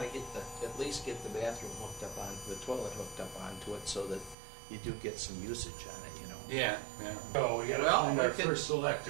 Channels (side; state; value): left; drops out; at 4.4 s